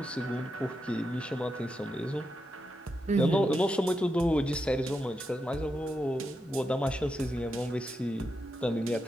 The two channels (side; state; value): both; normal; correlation 0.85